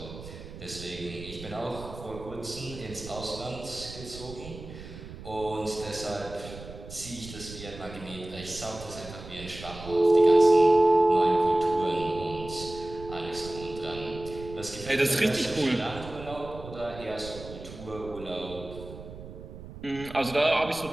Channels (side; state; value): right; noise; rumble, 14 dB below the sound